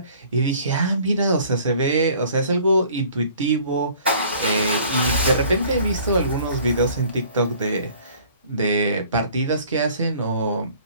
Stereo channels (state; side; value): inverted; both; correlation -0.53